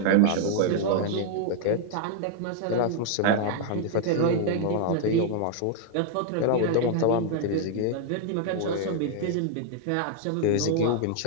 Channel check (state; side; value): different; both; correlation 0.00